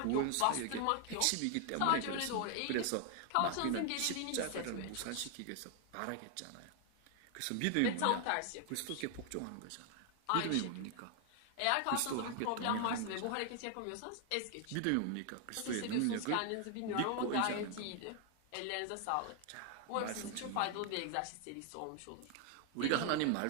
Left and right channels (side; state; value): both; different; correlation 0.00